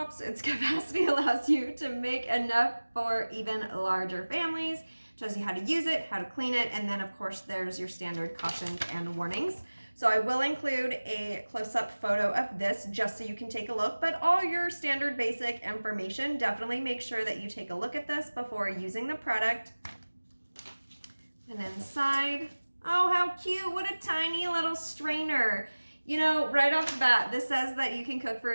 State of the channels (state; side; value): inverted; both; correlation -1.00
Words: Its capacity allows you to make enough for even larger families. Shows you how to use it, how to clean it, and then of course there's your standard cautions and warnings. So I will include a close-up photo of this just so you can take a look, but all your standard basic information, definitely make sure that you take a look at this before using the product. And inside, oh how cute, what a tiny little strainer. Right off the bat, this says that you can cook for